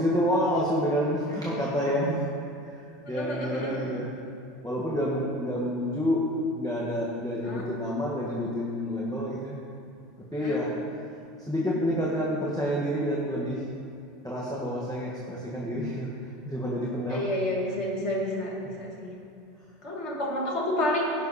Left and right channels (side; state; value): both; normal; correlation 0.41